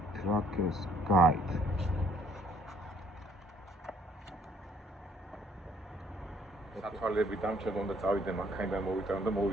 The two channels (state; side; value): normal; both; correlation 0.63